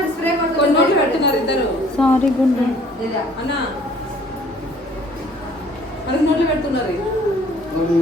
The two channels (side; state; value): both; normal; correlation 0.56